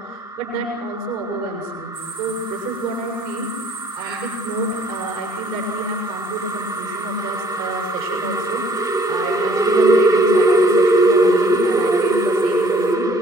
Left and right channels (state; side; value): normal; both; correlation 0.58